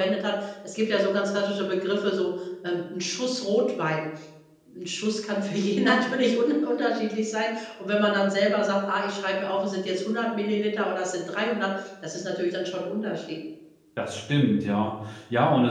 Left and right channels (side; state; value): both; identical; correlation 1.00